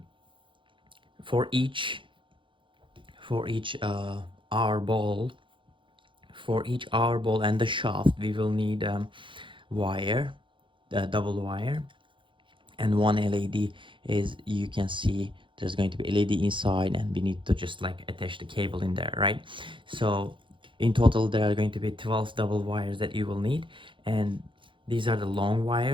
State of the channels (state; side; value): late; left; 0.24 ms